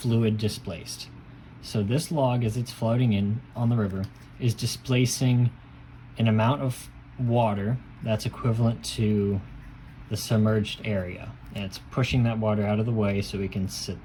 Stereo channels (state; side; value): identical; both; correlation 1.00